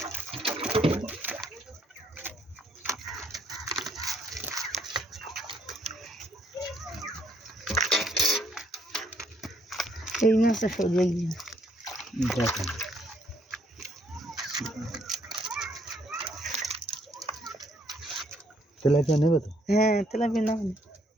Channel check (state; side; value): normal; both; correlation 0.69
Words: এই মাছটা সরিয়ে গিয়ে দেখেন তেলাপিয়া নেবে তো? হ্যাঁ তেলাপিয়া না